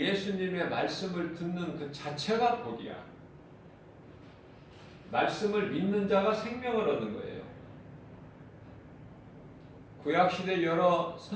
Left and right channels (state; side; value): identical; both; correlation 1.00